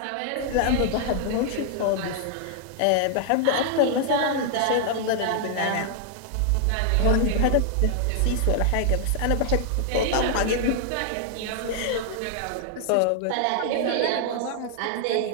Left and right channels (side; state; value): both; different; correlation 0.00